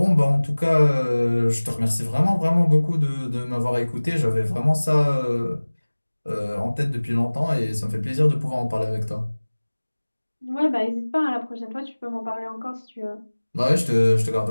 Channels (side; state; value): both; inverted; correlation -1.00